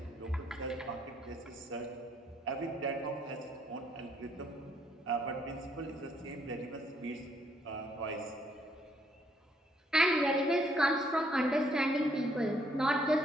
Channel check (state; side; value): normal; both; correlation 0.69